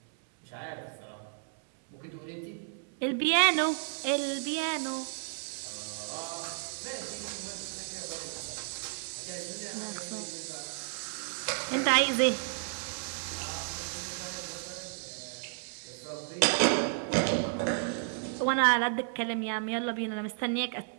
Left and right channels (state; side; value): silent; left; 56 dB below the other